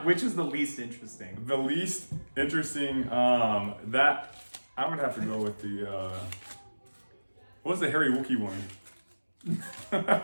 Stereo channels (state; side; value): inverted; both; correlation -1.00